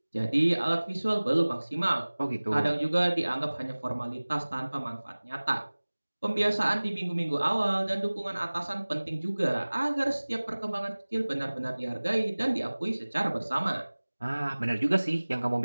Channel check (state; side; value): inverted; both; correlation -1.00